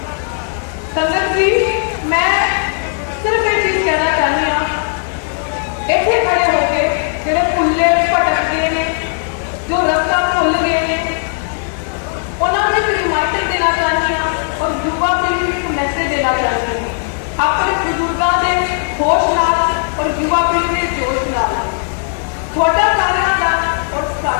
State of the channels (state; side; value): silent; right; digital silence